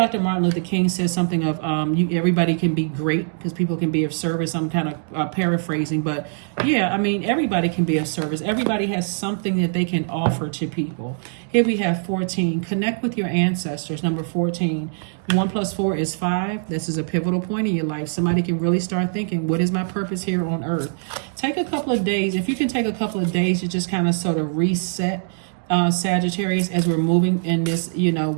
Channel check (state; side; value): silent; left; digital silence